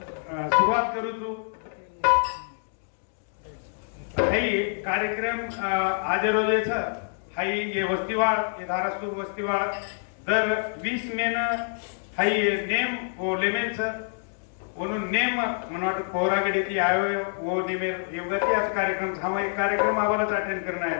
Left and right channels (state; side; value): silent; right; digital silence